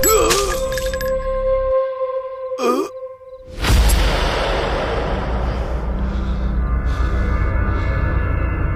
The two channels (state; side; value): identical; both; correlation 1.00